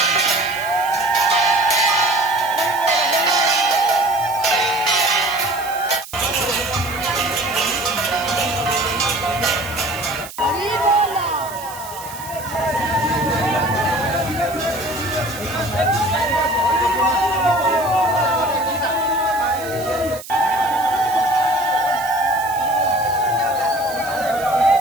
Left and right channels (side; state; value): right; noise; hiss, 15 dB below the sound